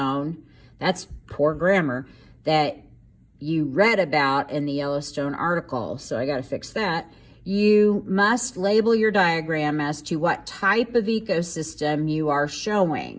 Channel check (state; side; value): identical; both; correlation 1.00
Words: That's poor grammar. That you read about in the Yellowstone article. So I got to fix that. You must label your diagram as to what type of ecosystem you are